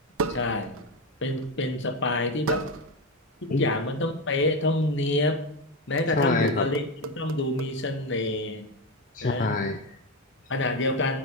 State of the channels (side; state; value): both; normal; correlation 0.14